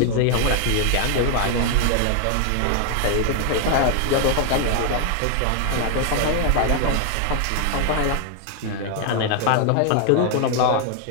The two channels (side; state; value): both; different; correlation 0.00